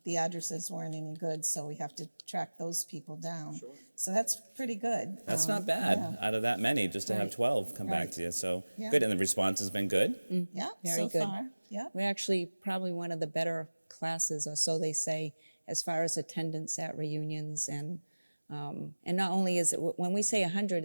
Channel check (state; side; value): inverted; both; correlation -1.00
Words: the addresses weren't any good, so we have to track those people down. Sure. So that's pretty good. That's not bad out of that many, just to have 12 come back to you. So good, and the response has been good? Yeah, Very so good. far. Yeah. We're actually probably one of the better classes, or so they say, as far as attendance at reunions. And not only is it, when we say 100,